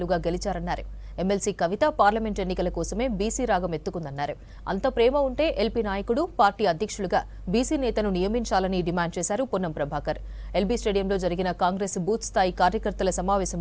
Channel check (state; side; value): identical; both; correlation 1.00